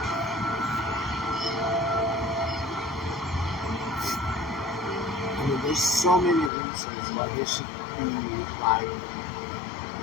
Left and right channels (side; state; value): right; drops out; at 6.5 s